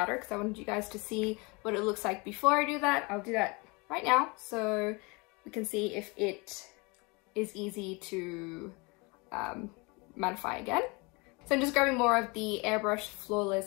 because I wanted you guys to see what it looks like before I do that. I'll do that right now so we can see if it is easy to mattify again. So I'm just grabbing more of the Airbrush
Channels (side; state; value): right; quieter; 27.9 dB